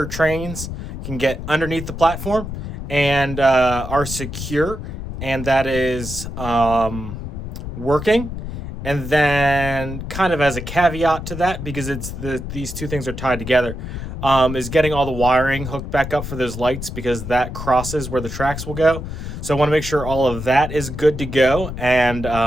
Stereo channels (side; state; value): left; noise; rumble, 7 dB below the sound